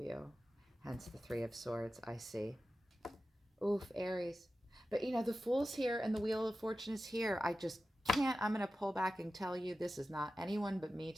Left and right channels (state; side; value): normal; both; correlation 0.94